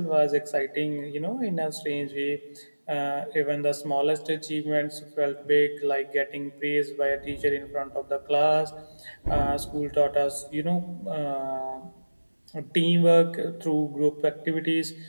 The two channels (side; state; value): both; inverted; correlation -1.00